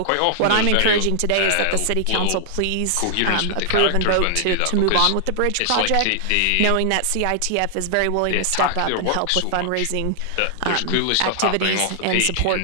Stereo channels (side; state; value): both; different; correlation 0.00